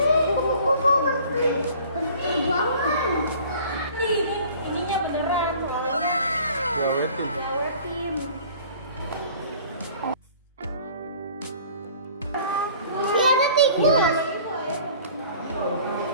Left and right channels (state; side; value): inverted; both; correlation -0.49